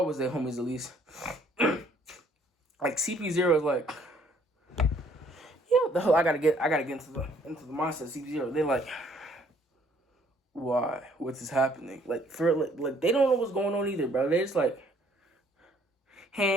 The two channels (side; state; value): both; normal; correlation 0.62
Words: was their homies at least. CP0 is yeah, I gotta get into the mindset of CP0. They're why? What's is happening? They don't know what's going on either, bro. They just